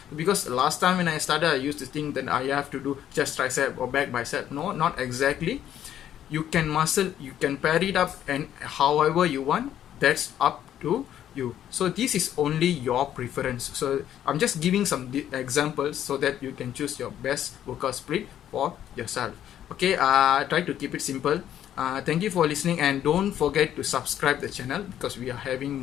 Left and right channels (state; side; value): quieter; right; 10.8 dB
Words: because last time when I started I used to think that I have to do chest, tricep or back, bicep. No, not exactly. You can pair it up and however you want, that's up to you. So this is only your preference. So I'm just giving some examples so that you can choose your best workout split for yourself. Okay, try to keep it simple. Thank you for listening, and don't forget to subscribe the channel, because we are having